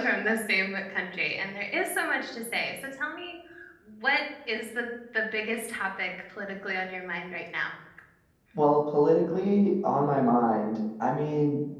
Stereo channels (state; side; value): identical; both; correlation 1.00